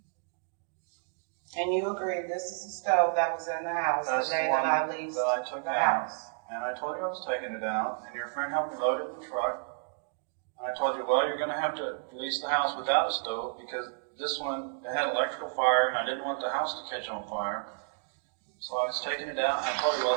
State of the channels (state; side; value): silent; left; digital silence